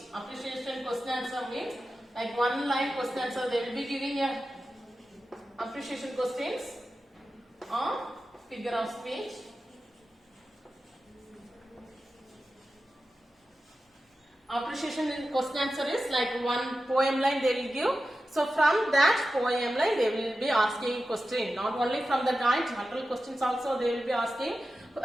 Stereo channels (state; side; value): normal; both; correlation 0.93